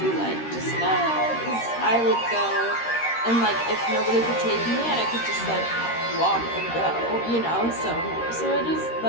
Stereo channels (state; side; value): late; right; 13 ms